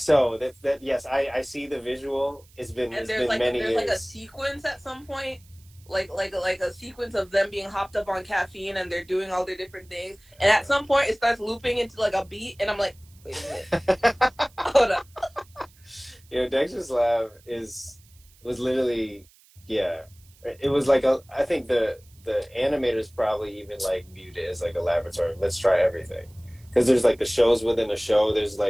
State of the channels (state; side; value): noise; right; hiss, 29 dB below the sound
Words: That yes, I see the visual. It's been many years. There's like a sequence at some point, like a sequence of them being hopped up on caffeine and they're doing all their different things. And at some point, it starts looping into like a beat, and I'm like, wait a minute, hold up. You know, Dexter's Lab was literally, it was like I think the animators probably even like viewed it as like a laboratory. Let's try everything, because there's like the shows within a show. There's